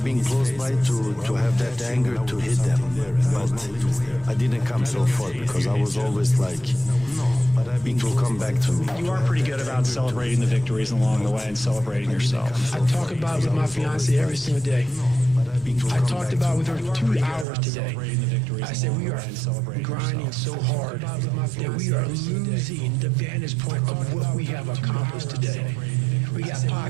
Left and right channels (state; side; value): drops out; left; at 17.4 s